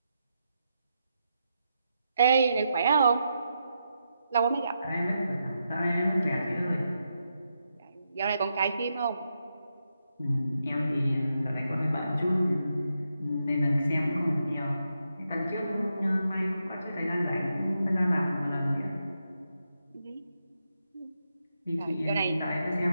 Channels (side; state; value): both; inverted; correlation -0.84